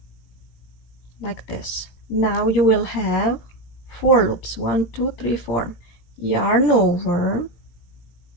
like this. Now you will have 4 loops. 1, 2, 3, 4. Yarn over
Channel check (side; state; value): right; late; 17 ms